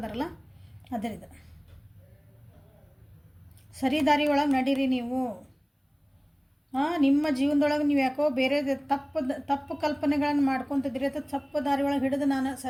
ಅದರಿದು. ಸರಿ ದಾರಿ ಒಳಗೆ ನಡೀರಿ ನೀವು. ನಿಮ್ಮ ಜೀವನದೊಳಗೆ ನೀವು ಯಾಕೋ ಬೇರೆ ತಪ್ಪು ಕಲ್ಪನೆಗಳನ್ನು ಮಾಡ್ಕೊತಿದ್ದೀರಿ ಅಥವಾ ತಪ್ಪು ದಾರಿ ಒಳಗೆ ಹಿಡಿದು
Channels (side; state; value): both; identical; correlation 1.00